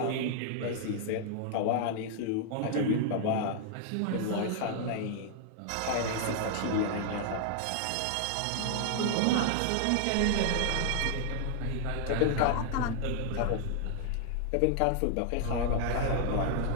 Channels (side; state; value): both; different; correlation 0.00